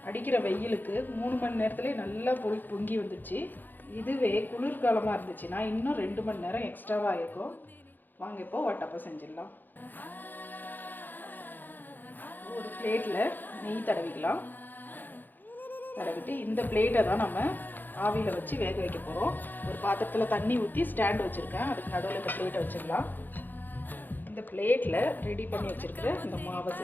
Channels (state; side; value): late; right; 0.088 ms